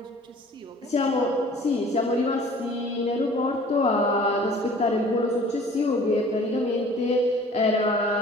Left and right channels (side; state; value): both; normal; correlation 0.50